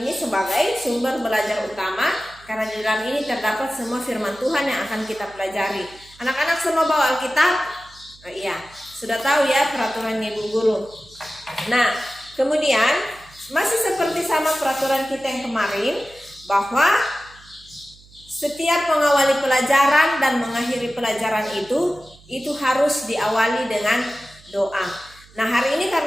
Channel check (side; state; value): right; noise; hum, 25 dB below the sound